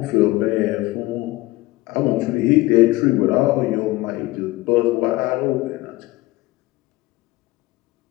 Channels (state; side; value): quieter; right; 19.3 dB